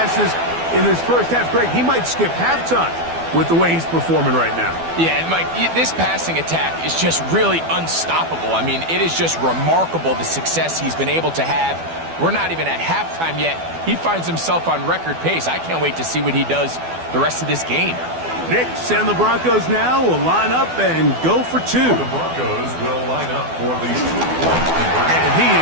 in his first half. Greg, he might skip halftime with the way he's performing right now. Yeah, Mike, this passing attack is just really unstoppable. I mean, it is just remarkable the success he's been able to have. We're not even at halftime yet. He finds himself on record pace. I can't wait to see what he does the rest of this game. Nix and the Broncos now will line up and go for 2. The Broncos will line up for the 2-point conversion. And he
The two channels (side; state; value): left; late; 12 ms